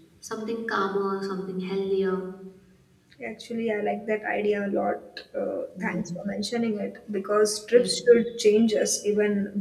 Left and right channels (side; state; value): both; identical; correlation 1.00